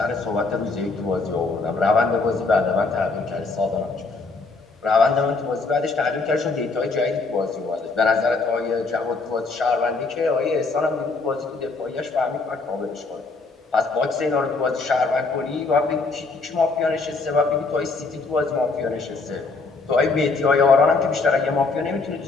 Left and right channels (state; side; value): quieter; right; 3.9 dB